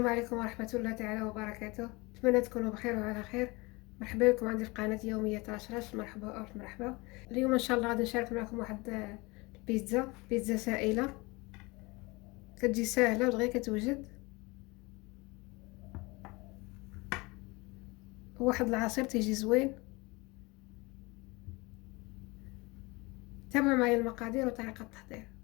عليكم ورحمة الله تعالى وبركاته. أتمنى تكونوا بخير وعلى خير. مرحبا بكم عندي في قناة يومية رشرش. مرحبا ألف مرحبا. اليوم إن شاء الله غادي نشارك معكم واحد بيتزا سائلة، كتجي ساهلة ودغيا كتوجد. واحد العصير تيجي زوين. تابعوا معايا المقادير وطريقة التحضير.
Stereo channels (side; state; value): right; quieter; 24.9 dB